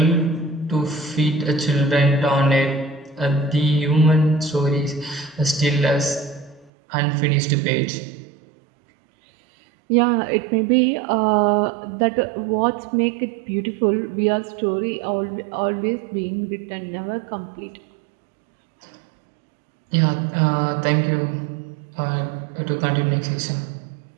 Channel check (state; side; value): drops out; left; at 6.7 s